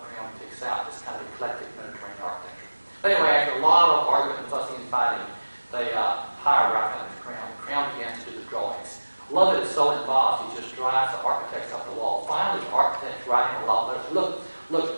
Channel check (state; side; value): inverted; both; correlation -1.00